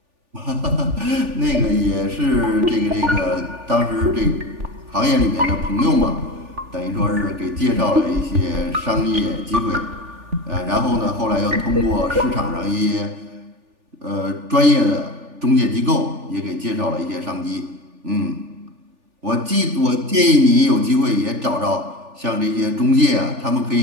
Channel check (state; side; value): late; left; 3.4 ms